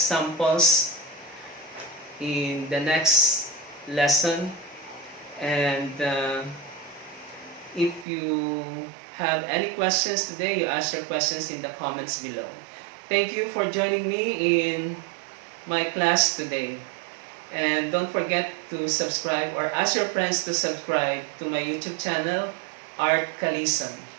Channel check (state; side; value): drops out; left; at 8.1 s